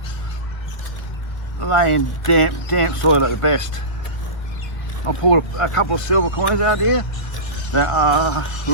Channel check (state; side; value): late; right; 1.6 ms